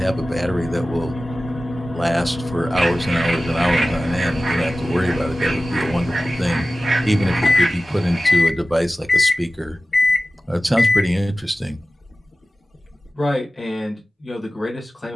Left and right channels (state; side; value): normal; both; correlation 0.96